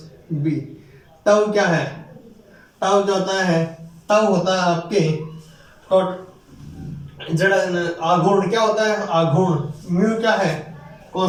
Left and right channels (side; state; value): both; identical; correlation 1.00